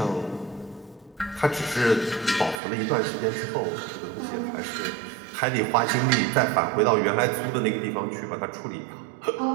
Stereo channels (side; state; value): left; drops out; at 2.6 s